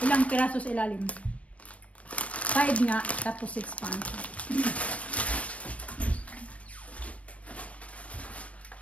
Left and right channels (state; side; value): late; right; 0.067 ms